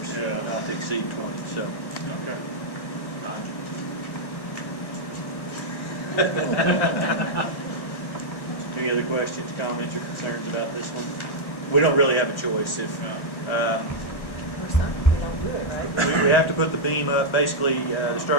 Yeah. not to exceed 20, so. Okay. Any other questions, comments, or concerns about this one? We don't really have a choice. If Or something, we don't do it right. we have to put the beam up, basically, the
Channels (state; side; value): late; right; 1.4 ms